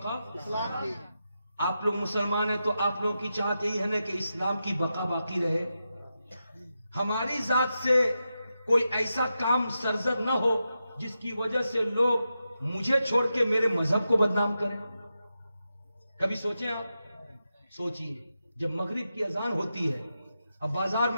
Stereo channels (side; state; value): both; inverted; correlation -0.89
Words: آپ لوگ مسلمان ہیں تو آپ لوگوں کی چاہت یہی ہے نا کہ اسلام کی بقا باقی رہے، ہماری ذات سے کوئی ایسا کام سرزد نہ ہو جس کی وجہ سے لوگ مجھے چھوڑ کے میرے مذہب کو بدنام کریں۔ کبھی سوچیں آپ، سوچئے جب مغرب کی اذان ہوتی ہے اب بازار